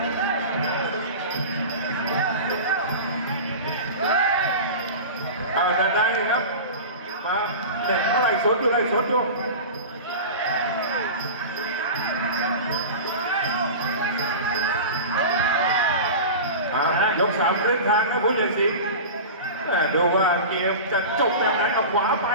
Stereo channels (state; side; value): inverted; both; correlation -0.30